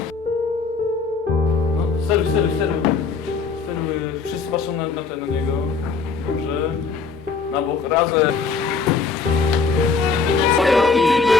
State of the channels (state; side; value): quieter; right; 4.8 dB